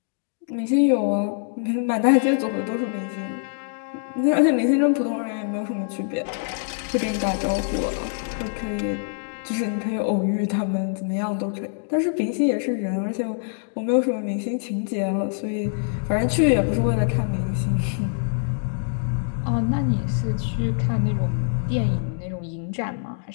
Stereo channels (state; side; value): silent; right; digital silence